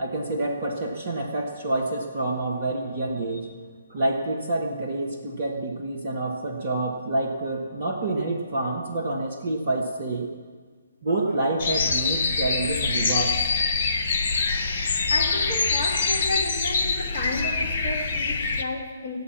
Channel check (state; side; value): inverted; both; correlation -0.69